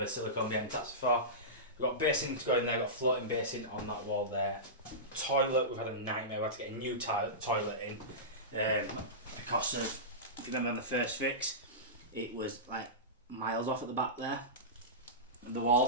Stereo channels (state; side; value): normal; both; correlation -0.18